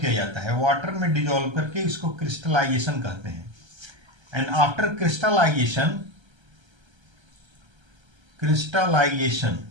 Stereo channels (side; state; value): left; late; 1.3 ms